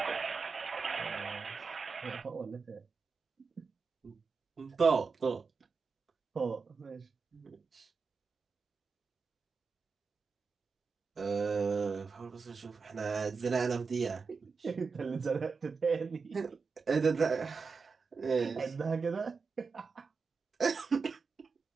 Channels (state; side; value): quieter; left; 4.9 dB